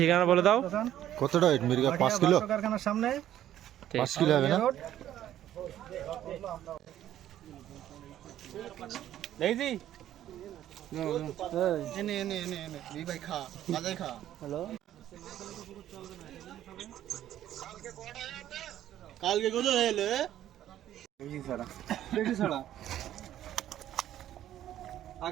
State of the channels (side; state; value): left; quieter; 12.0 dB